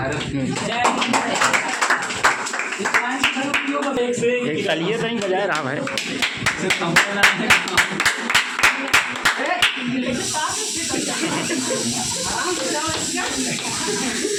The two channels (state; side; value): identical; both; correlation 1.00